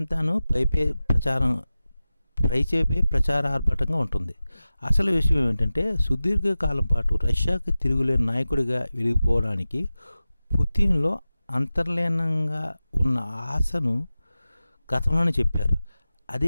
పైచేపే ప్రచార ఆర్భాటంగా ఉంటుంది. అసలు విషయం ఏమిటంటే సుదీర్ఘకాలం పాటు రష్యాకి తిరుగులేని నాయకుడిగా వెలిగిపోవడానికి పుతిన్లో అంతర్లీనంగా ఉన్న ఆశను గతంలోనే చెప్పారు.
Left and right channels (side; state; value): both; inverted; correlation -0.95